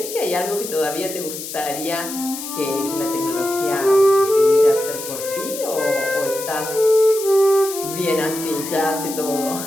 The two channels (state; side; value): noise; left; hiss, 9 dB below the sound